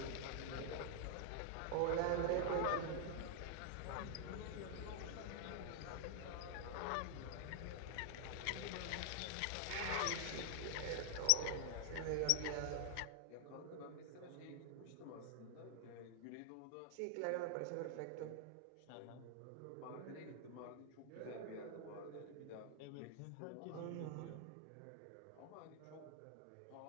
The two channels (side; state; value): both; different; correlation 0.00